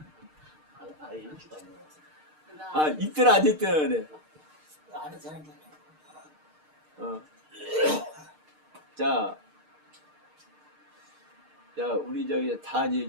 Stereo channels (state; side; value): late; left; 6.6 ms